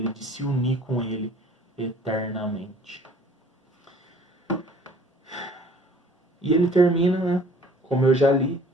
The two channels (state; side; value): normal; both; correlation 0.53